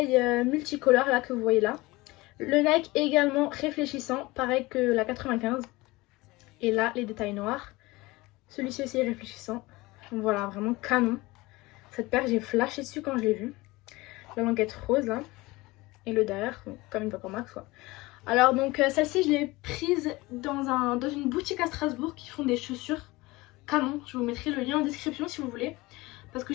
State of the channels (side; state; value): right; quieter; 21.4 dB